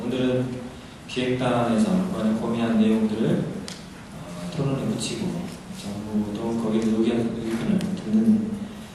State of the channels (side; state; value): both; identical; correlation 1.00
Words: 오늘은 기획단에서 이번에 고민한 내용들을 토론에 붙이고 정부도 거기에 의견을 듣는